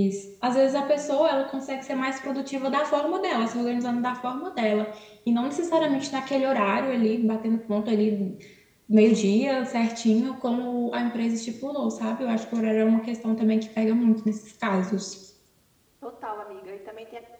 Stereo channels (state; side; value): identical; both; correlation 1.00